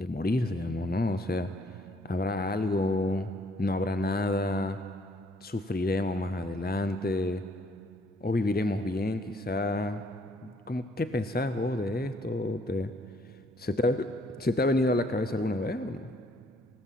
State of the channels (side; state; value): both; normal; correlation 0.65